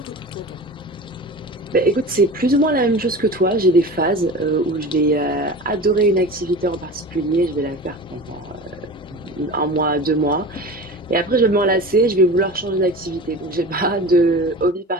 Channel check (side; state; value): both; normal; correlation 0.34